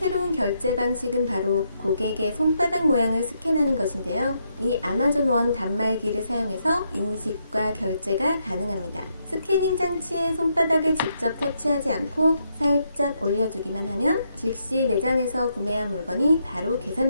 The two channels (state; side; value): inverted; both; correlation -0.78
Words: 결제 방식은 바로 고객의 손바닥 모양을 스캔하는 것인데요. 이 아마존 원 단말기를 사용해서 인식과 결제가 가능합니다. 스캐닝 장치에 손바닥을 직접 터치하지 않고 살짝 올려주기만 하면 즉시 매장에서 구매한 물건이 바로